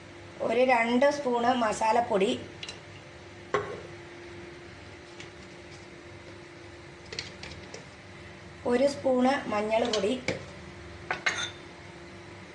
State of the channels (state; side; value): identical; both; correlation 1.00